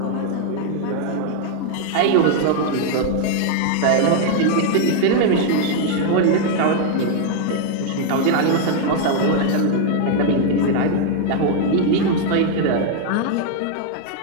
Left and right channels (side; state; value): both; different; correlation 0.00